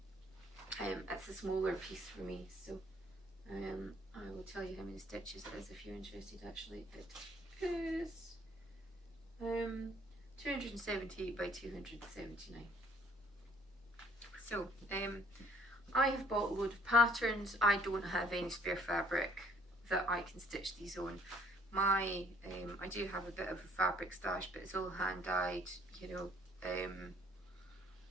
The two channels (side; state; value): both; normal; correlation 0.60